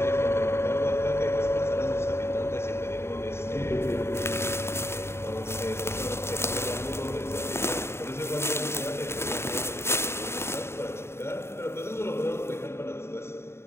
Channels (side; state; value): right; late; 0.12 ms